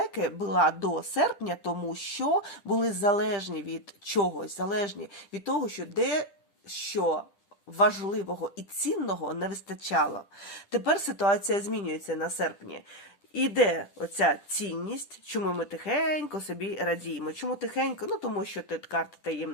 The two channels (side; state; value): right; late; 10 ms